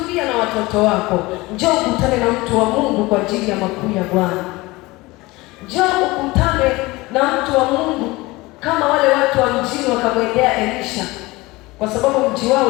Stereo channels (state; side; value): quieter; right; 21.5 dB